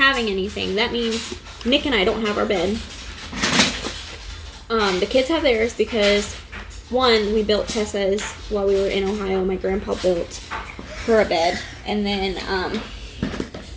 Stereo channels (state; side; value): identical; both; correlation 1.00